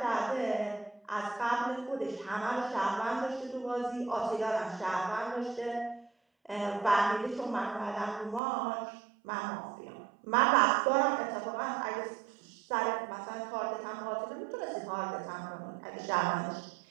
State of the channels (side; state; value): left; drops out; at 8.4 s